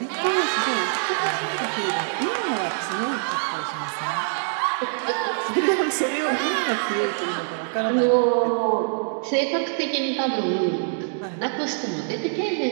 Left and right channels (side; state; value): left; silent; digital silence